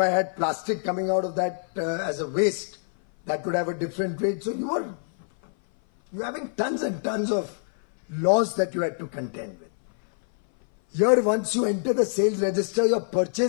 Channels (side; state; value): right; silent; 58 dB below the other